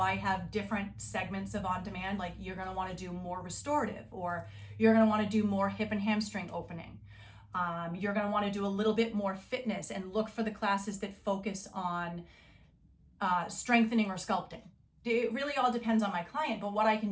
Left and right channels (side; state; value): both; identical; correlation 1.00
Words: I have different segments of on-demand, like you're going to want to do more restorative, or you're going to want to do more hip and hamstring opening. You're going to want to do a little bit more fitness and look for the classes that focus on strengthening or sculpting. It really all depends on my client, but what I